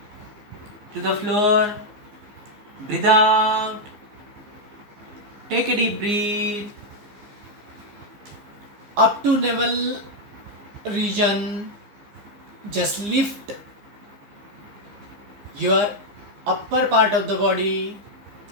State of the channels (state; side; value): late; left; 15 ms